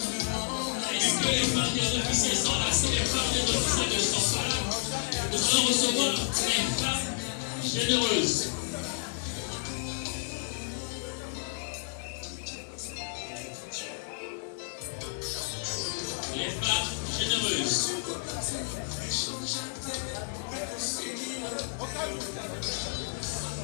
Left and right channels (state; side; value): silent; right; digital silence